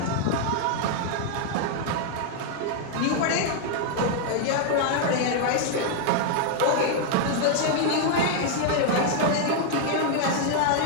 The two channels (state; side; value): different; both; correlation 0.00